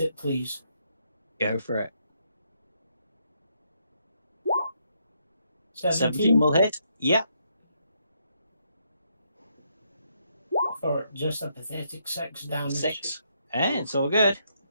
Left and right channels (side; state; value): both; inverted; correlation -0.76